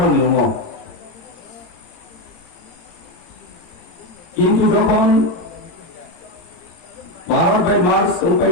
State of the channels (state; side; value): late; right; 18 ms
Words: নিয়ম কিন্তু যখন 12 বাই মার্চ উপায়